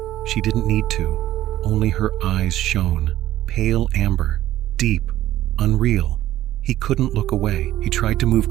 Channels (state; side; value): quieter; left; 13.9 dB